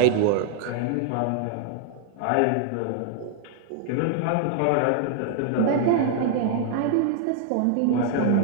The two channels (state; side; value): different; both; correlation 0.00